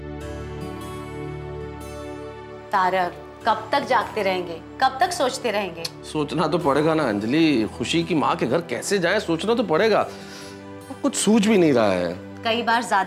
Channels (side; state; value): both; identical; correlation 1.00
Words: तारक, कब तक जागते रहेंगे, कब तक सोचते रहेंगे? सोचना तो पड़ेगा ना अंजलि। खुशी की माँ के घर कैसे जाएं, सोचना तो पड़ेगा। कुछ सूझ भी नहीं रहा है। कई बार